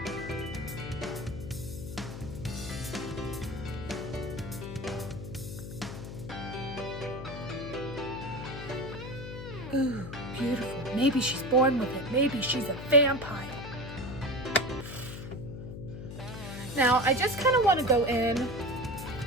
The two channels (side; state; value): left; noise; hum, 9 dB below the sound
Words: Ooh, beautiful. Maybe she's born with it. Maybe she's a vampire. Now, I just kind of want to go in